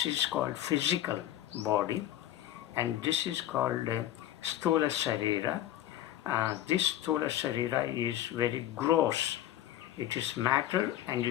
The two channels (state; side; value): quieter; right; 12.7 dB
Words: is called physical body, and this is called Sthola Sarira. This Sthola Sarira is very gross. It is matter and